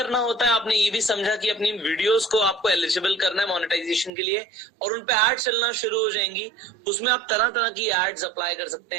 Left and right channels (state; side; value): drops out; left; at 4.1 s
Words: होता है, आपने ये भी समझा कि अपनी वीडियोस को आपको एलिजिबल करना है मोनेटाइजेशन के लिए और उन पे एड चलना शुरू हो जाएंगी। उसमें आप तरह तरह की एड्स अप्लाई कर सकते